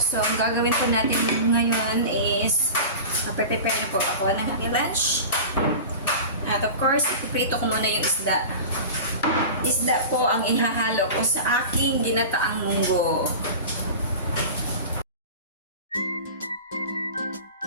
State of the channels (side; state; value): both; inverted; correlation -0.33